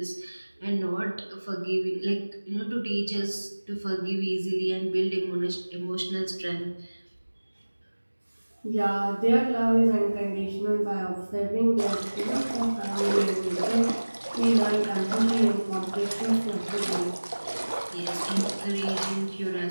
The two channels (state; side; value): inverted; both; correlation -1.00